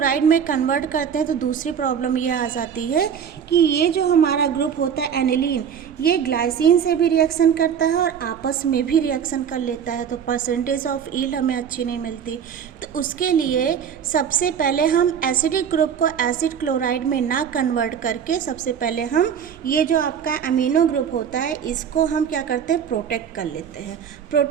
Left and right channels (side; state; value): left; quieter; 7.9 dB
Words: में कन्वर्ट करते हैं तो दूसरी प्रॉब्लम ये आ जाती है कि ये जो हमारा ग्रुप होता है एनिलीन, ये ग्लाइसिन से भी रिएक्शन करता है और आपस में भी रिएक्शन कर लेता है, तो परसेंटेज ऑफ यील्ड हमें अच्छी नहीं मिलती। तो उसके लिए सबसे पहले हम एसिडिक ग्रुप को एसिड क्लोराइड में ना कन्वर्ट करके सबसे पहले हम ये जो आपका अमीनो ग्रुप होता है इसको हम क्या करते हैं, प्रोटेक्ट कर लेते हैं।